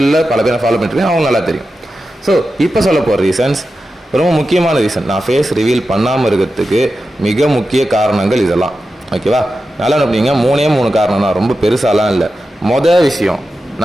பல பேரை ஃபாலோ பண்ணிட்டுருக்கேன், அவங்க நல்லா தெரியும். ஸோ இப்போ சொல்ல போகிற ரீசன்ஸ் ரொம்ப முக்கியமான ரீசன். நான் ஃபேஸ் ரிவீல் பண்ணாமல் இருக்கிறதுக்கு மிக முக்கிய காரணங்கள் இதெல்லாம். ஓகேவா, நல்லா அப்படிங்க. 3 காரணம் தான், ரொம்ப பெருசாலாம் இல்லை. மொதல் விஷயம்,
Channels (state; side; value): normal; both; correlation 0.91